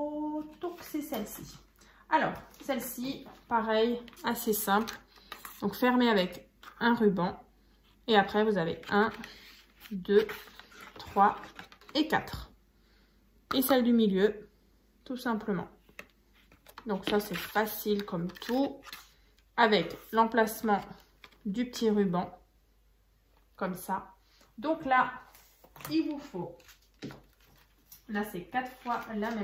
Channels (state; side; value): identical; both; correlation 1.00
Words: donc c'est celle-ci. Alors, celle-ci, pareil, assez simple. Donc fermée avec un ruban. Et après, vous avez 1, 2, 3 et 4. Et celle du milieu, tout simplement. Donc ça, c'est facile comme tout. Avec l'emplacement du petit ruban, comme ça. Donc là, il vous faut, là c'est 4 fois la